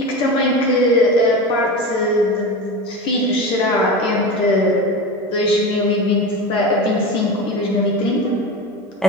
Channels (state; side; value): normal; both; correlation 0.25